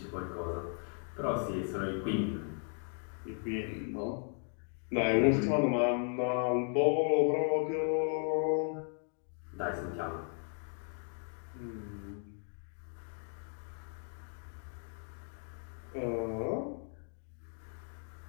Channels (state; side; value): silent; right; 54 dB below the other